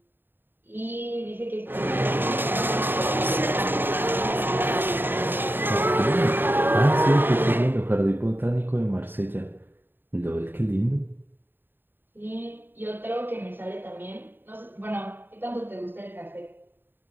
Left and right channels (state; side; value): late; left; 0.096 ms